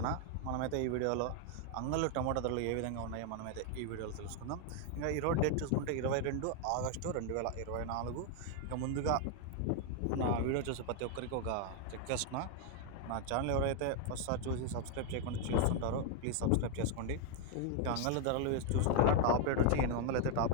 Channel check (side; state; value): both; different; correlation 0.00